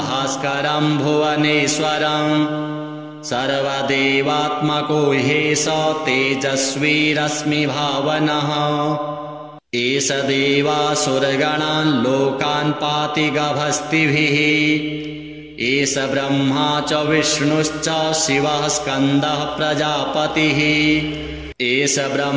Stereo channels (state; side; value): identical; both; correlation 1.00